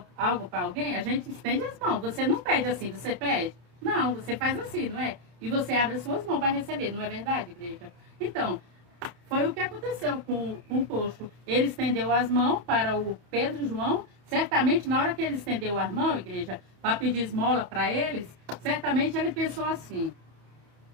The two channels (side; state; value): left; late; 29 ms